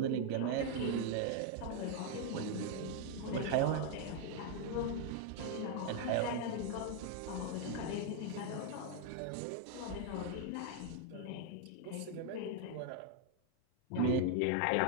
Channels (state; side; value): different; both; correlation 0.00